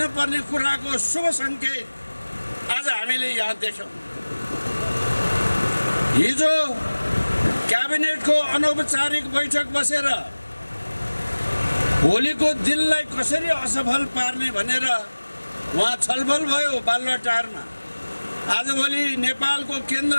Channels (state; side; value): inverted; both; correlation -1.00